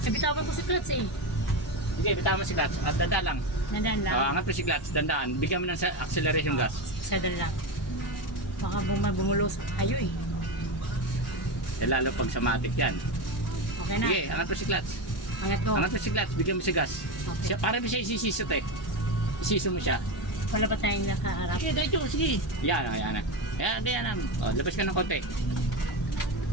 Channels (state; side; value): normal; both; correlation 0.17